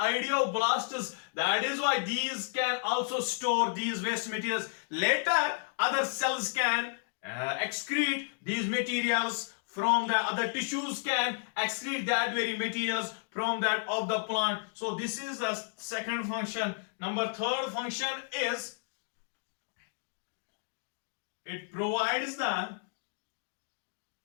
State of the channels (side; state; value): right; silent; digital silence